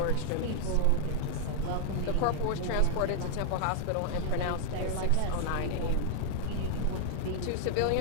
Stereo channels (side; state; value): both; different; correlation 0.00